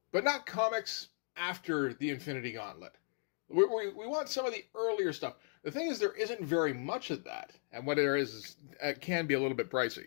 But not comics after the Infinity Gauntlet. We want some of the earlier stuff. The thing is, there isn't very much of that, and what there is, it can be a little bit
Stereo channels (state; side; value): silent; right; 54 dB below the other